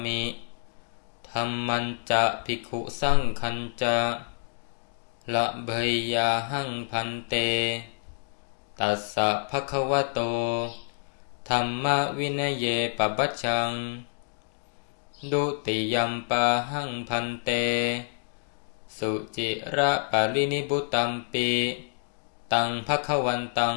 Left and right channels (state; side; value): silent; right; digital silence